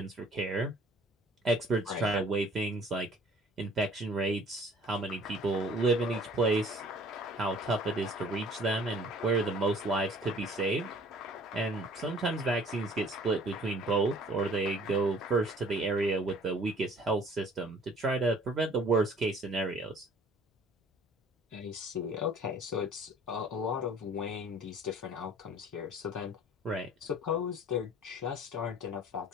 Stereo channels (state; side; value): normal; both; correlation 0.53